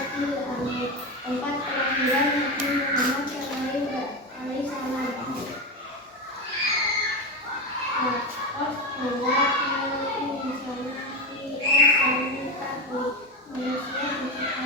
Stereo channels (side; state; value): both; normal; correlation 0.17